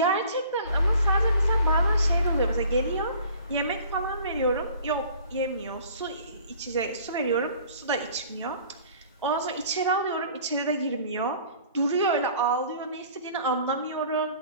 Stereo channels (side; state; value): both; inverted; correlation -0.50